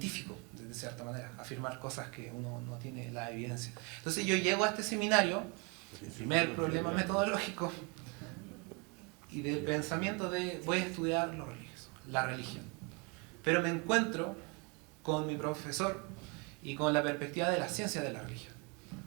de cierta manera, afirmar cosas que uno no tiene la evidencia. Entonces yo llego a este seminario, el primer problema metodológico y del pensamiento de voy a estudiar lo religioso, la religión. Pero me encuentro con mi profesor y con la perspectiva de la ciencia de la religión,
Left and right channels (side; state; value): left; quieter; 31.6 dB